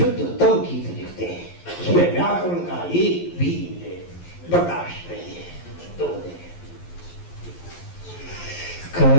गीत लिखते हैं, उसमें व्याकरण का एक भी बर्दाश्त नहीं है। तो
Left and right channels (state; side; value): late; right; 11 ms